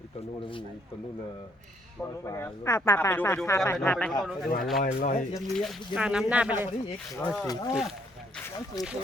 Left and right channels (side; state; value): both; normal; correlation 0.68